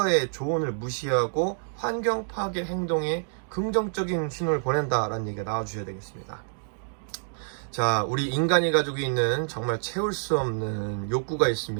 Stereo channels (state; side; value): silent; left; digital silence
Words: 조언을 무시하고 환경 파괴 행동에 긍정적인 신호를 보낸다라는 얘기가 나와주셔야 되겠습니다. 자, 우리 인간이 가지고 있는 정말 채울 수 없는 욕구가